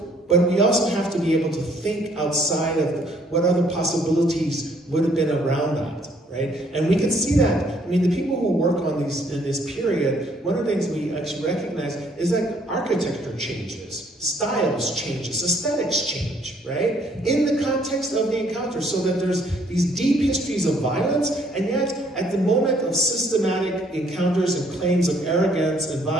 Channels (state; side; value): normal; both; correlation 0.64